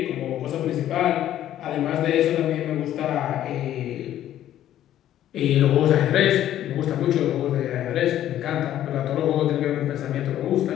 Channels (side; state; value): right; quieter; 12.0 dB